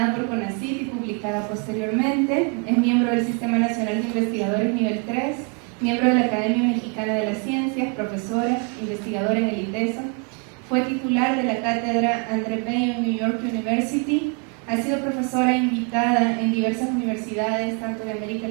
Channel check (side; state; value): left; quieter; 35.6 dB